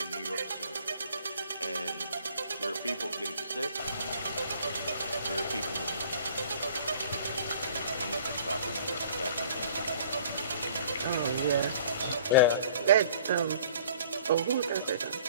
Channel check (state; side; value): inverted; both; correlation -0.51